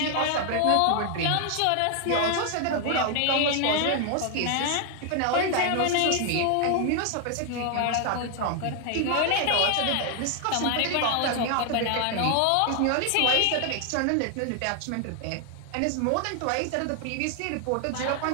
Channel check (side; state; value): both; different; correlation 0.00